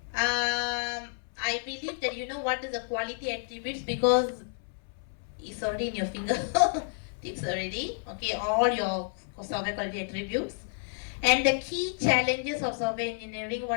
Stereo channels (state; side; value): silent; right; 58 dB below the other